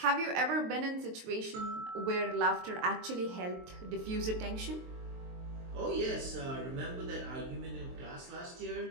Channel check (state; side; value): late; left; 23 ms